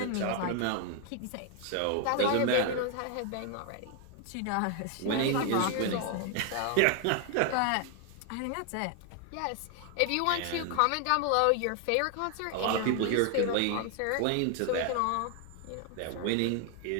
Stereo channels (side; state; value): both; different; correlation 0.00